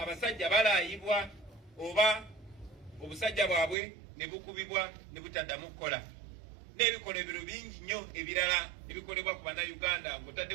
balaayibwa oba obusajja bwabwe ne bukubibwa ne butaddamu kukola. N'ebikolebero bingi nnyo ebirala ebikolebwa ku bannayuganda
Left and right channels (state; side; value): drops out; left; at 3.8 s